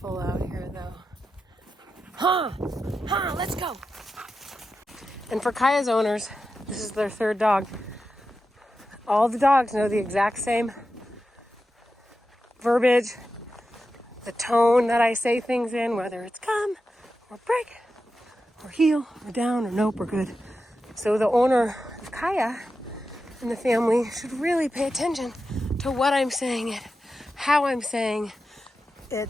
out here though. Let's go. And for Kaya's owners, this is their third dog. All the dogs know the exact same verbiage, the tone that I say things in, whether it's come or break or heel or down or nope or good. So the owner of Kaya and the family should really pay attention to what I'm saying it, how I'm saying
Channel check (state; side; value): normal; both; correlation 0.90